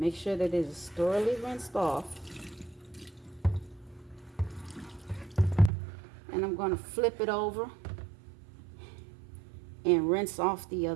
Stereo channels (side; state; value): left; drops out; at 5.7 s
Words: sure that it is thoroughly rinsed off. And I'm going to flip it over and rinse off the